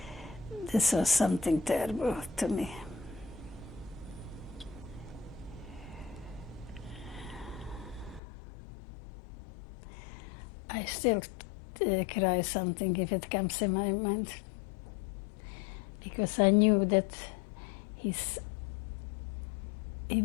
this was something terrible to me. I still cry something if it comes in my mind, because I knew that he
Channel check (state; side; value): drops out; right; at 8.2 s